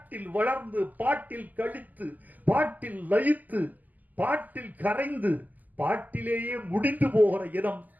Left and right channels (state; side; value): late; left; 0.082 ms